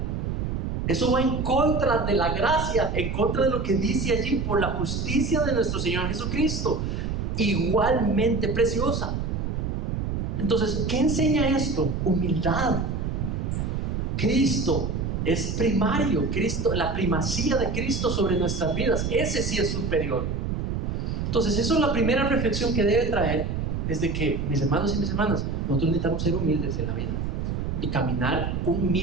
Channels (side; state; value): right; noise; rumble, 2 dB below the sound